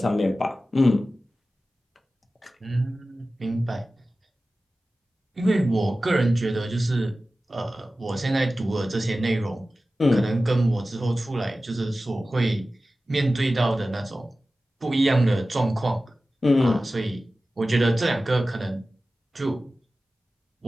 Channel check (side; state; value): both; normal; correlation 0.95